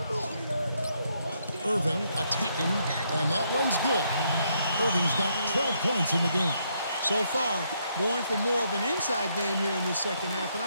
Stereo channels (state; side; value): inverted; both; correlation -0.75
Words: Irving attacking, and that one's good. Irving's got 12 points in the game. So far, going for more of an inside game here in this second half, and